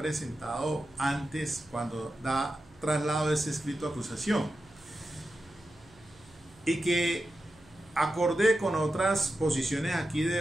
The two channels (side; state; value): right; noise; hum, 27 dB below the sound